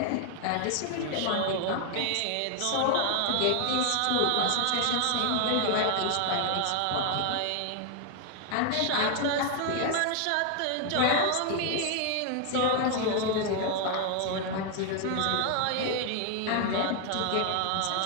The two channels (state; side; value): different; both; correlation 0.00